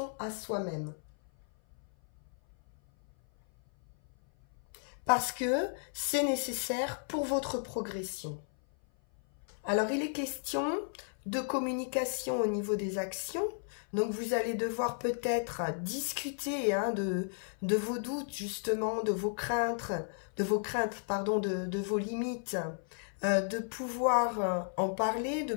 à soi-même. Parce que c'est nécessaire pour votre progression. Alors, il est question de communication au niveau des actions. Donc, vous allez devoir peut-être discuter hein, de vos doutes, justement, de vos craintes, de vos limites, de pouvoir en parler, de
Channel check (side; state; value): right; silent; 55 dB below the other